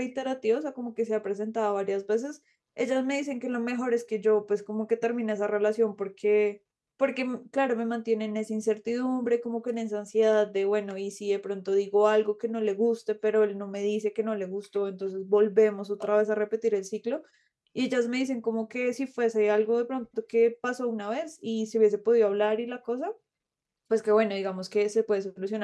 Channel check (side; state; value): both; identical; correlation 1.00